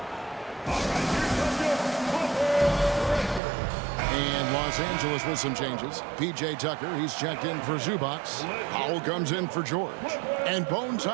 And Los Angeles with some changes. P.J. Tucker, he's checked in for Zubac. Powell comes in for George. And Bones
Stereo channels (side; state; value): left; drops out; at 3.4 s